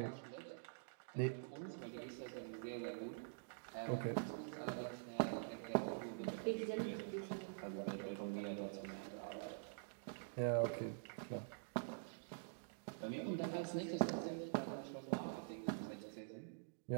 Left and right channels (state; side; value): silent; left; digital silence